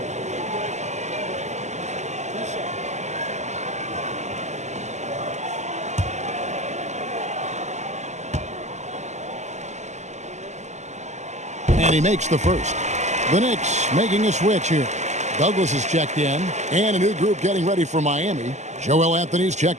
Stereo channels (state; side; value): late; left; 0.33 ms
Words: And he makes the first. The Knicks making a switch here. Douglas is checked in. And a new group getting ready for Miami. Joel Anthony's